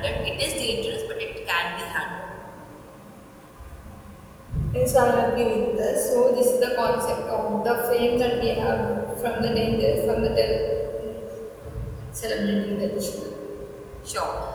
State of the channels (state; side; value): identical; both; correlation 1.00